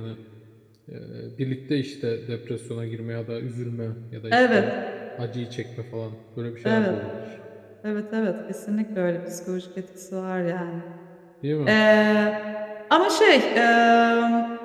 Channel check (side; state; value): both; identical; correlation 1.00